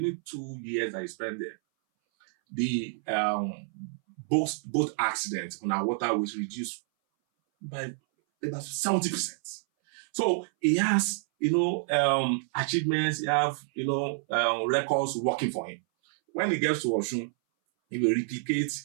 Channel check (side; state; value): left; silent; 59 dB below the other